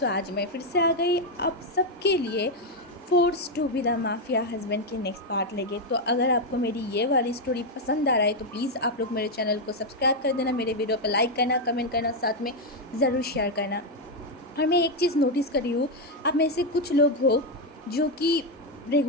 आज मैं फिर से आ गई आप सबके लिए force to be the mafia husband के नेक्स्ट पार्ट लेके। तो अगर आपको मेरी ये वाली स्टोरी पसंद आ रहा है तो प्लीज़ आप लोग मेरे चैनल को सब्सक्राइब कर देना, मेरे वीडियो पर लाइक करना, कमेंट करना, साथ में ज़रूर शेयर करना। और मैं एक चीज़ नोटिस कर रही हूँ, आप में से कुछ लोग हो जो कि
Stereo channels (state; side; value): normal; both; correlation 0.03